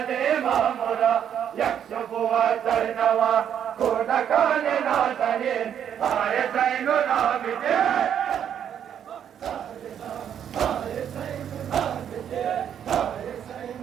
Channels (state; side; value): quieter; left; 9.1 dB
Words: दे मामुरा यक्षुबुआ करनवा कोद गान नादने आए ज़ैनुल